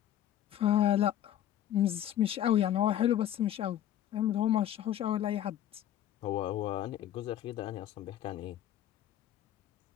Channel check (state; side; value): quieter; right; 11.6 dB